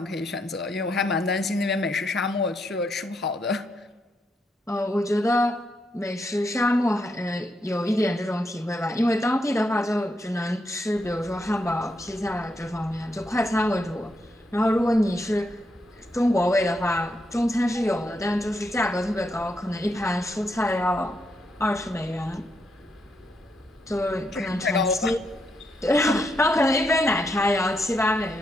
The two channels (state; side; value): normal; both; correlation 0.80